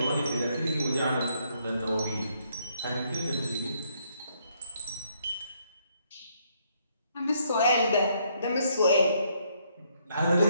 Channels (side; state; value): both; inverted; correlation -0.72